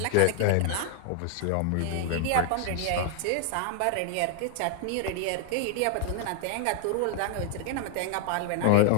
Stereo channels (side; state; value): both; different; correlation 0.00